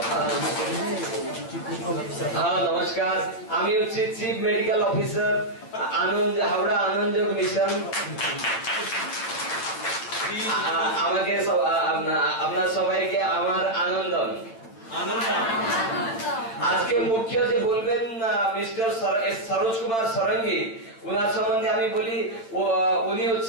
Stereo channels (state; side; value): late; right; 8.9 ms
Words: নমস্কার, আমি হচ্ছি চিফ মেডিকেল অফিসার আনন্দ হাওড়া আনন্দযোগ মিশন। আমাকে আপনার সবাইকে আমার আনন্দম। আজকে মুখ্য যে বলবেন মিস্টার সরোজ কুমার সরঙ্গী, ওনার সম্বন্ধে আমি বলি উনি